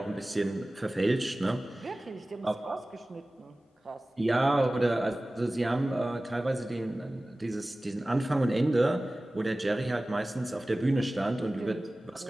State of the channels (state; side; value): normal; both; correlation 0.97